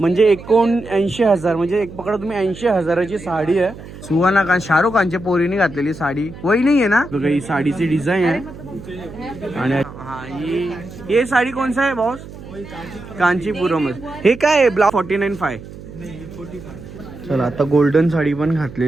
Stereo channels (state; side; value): noise; right; hum, 15 dB below the sound